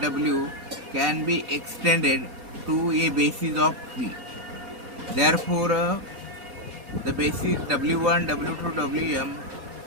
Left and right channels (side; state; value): left; late; 4.2 ms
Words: W can be extended to a basis of P. Therefore, the basis W1, W2, Wm,